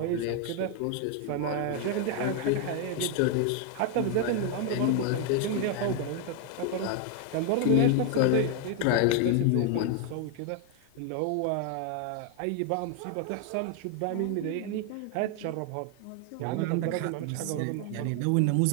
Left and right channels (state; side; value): different; both; correlation 0.00